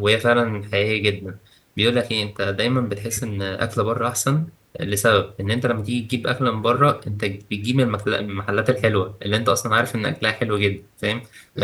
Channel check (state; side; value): identical; both; correlation 1.00